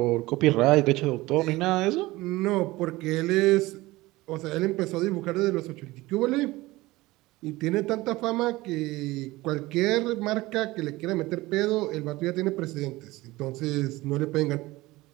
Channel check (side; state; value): left; quieter; 19.5 dB